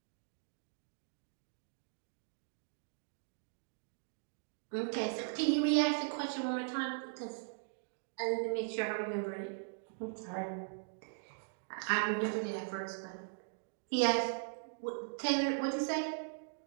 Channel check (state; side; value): silent; left; digital silence